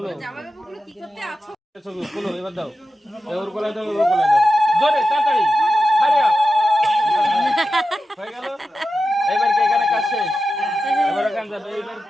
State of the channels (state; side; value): normal; both; correlation 0.92